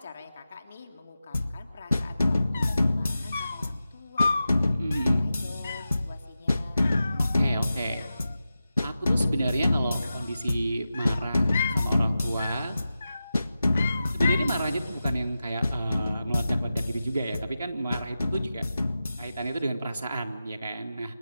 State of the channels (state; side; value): inverted; both; correlation -0.92